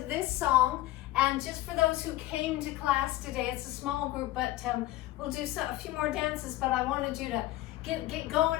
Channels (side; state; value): right; quieter; 16.2 dB